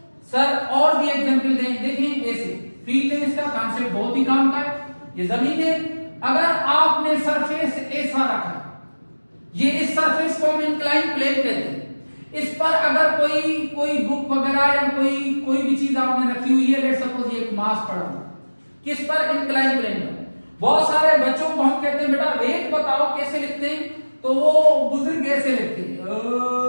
सर और भी एग्जांपल दें, देखिए ऐसे फील्ड है, इसका कॉन्सेप्ट बहुत ही काम का है। ये जमीन है, अगर आपने सरफेस ऐसा रखा, ये इस सरफेस को हम इंक्लाइन प्लेन कहते हैं। इस पर अगर कोई बुक वगैरह या कोई भी चीज आपने रखी हुई है, लेट सपोज ये एक मास पड़ा हुआ, किस पर? इंक्लाइन प्लेन पर। बहुत सारे बच्चों को हम कहते हैं बेटा वेट बताओ कैसे लिखते हैं, तो वो बुजुर्ग ऐसे लिखते हैं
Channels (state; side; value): inverted; both; correlation -1.00